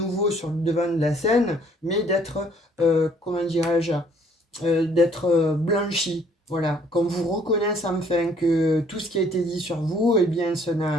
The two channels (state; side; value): normal; both; correlation 0.61